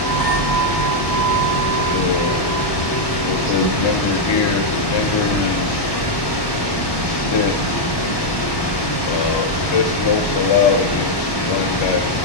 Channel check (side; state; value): right; late; 1.1 ms